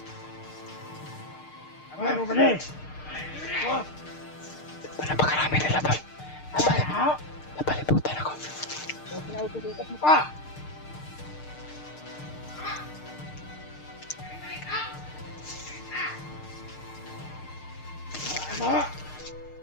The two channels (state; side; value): late; right; 6.6 ms